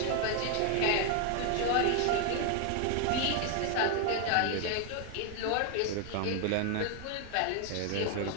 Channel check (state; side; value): different; both; correlation 0.01